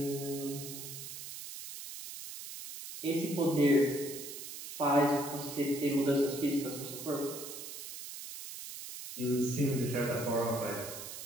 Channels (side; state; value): right; noise; hiss, 10 dB below the sound